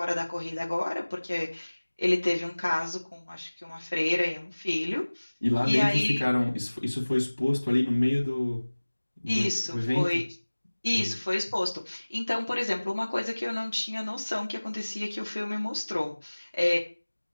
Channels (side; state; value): both; inverted; correlation -1.00